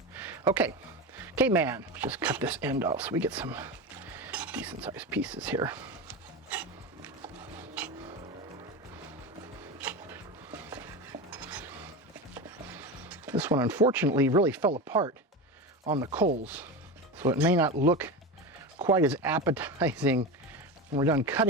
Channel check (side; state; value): both; normal; correlation 0.22